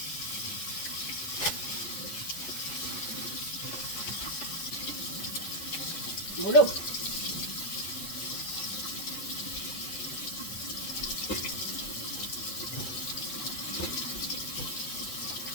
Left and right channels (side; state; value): right; late; 8.8 ms